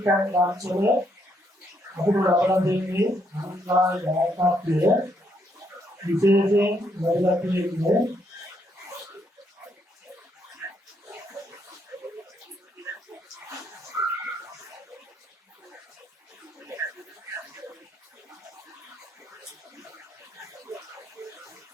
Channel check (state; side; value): normal; both; correlation 0.74